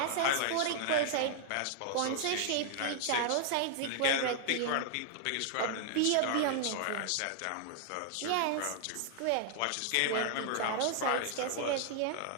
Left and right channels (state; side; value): different; both; correlation 0.00